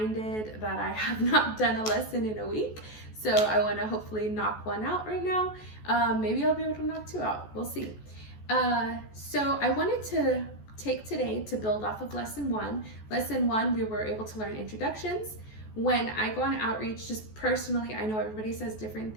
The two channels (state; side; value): late; right; 14 ms